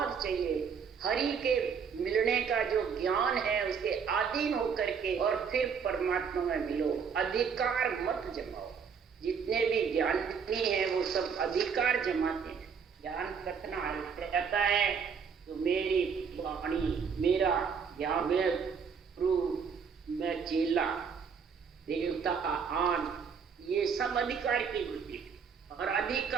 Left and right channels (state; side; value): quieter; left; 6.4 dB